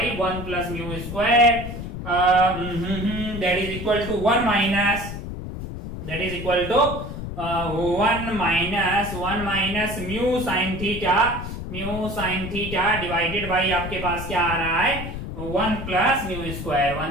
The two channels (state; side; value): noise; left; rumble, 7 dB below the sound